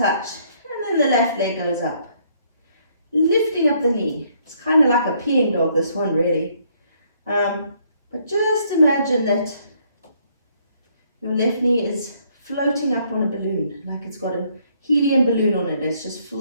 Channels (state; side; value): inverted; both; correlation -0.67